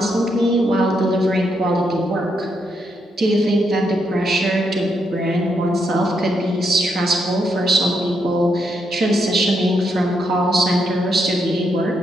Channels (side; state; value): both; normal; correlation 0.79